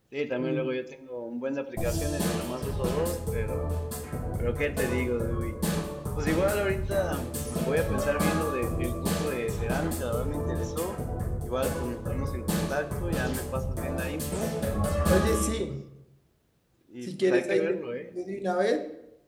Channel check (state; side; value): identical; both; correlation 1.00